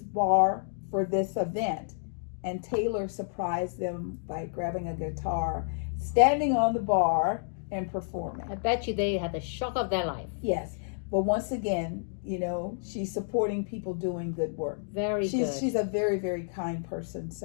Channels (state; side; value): silent; right; digital silence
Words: for this event. And Taylor surprised them by grabbing a guitar, standing on the bar, and performing. I bet you they had the shock of their life. Yes. But once again, she's supporting people doing good work. Very good. She's a very, very kind person.